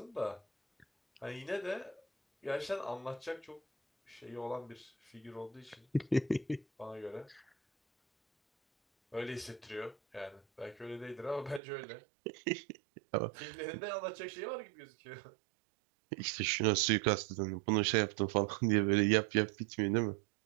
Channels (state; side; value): drops out; left; at 11.6 s